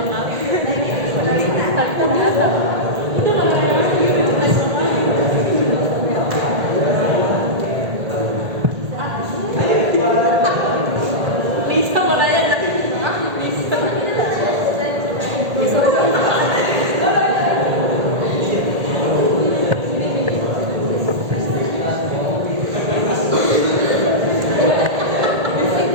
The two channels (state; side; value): late; left; 1.8 ms